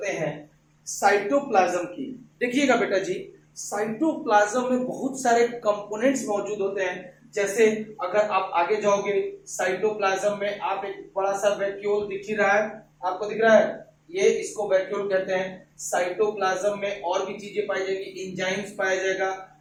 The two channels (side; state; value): both; identical; correlation 1.00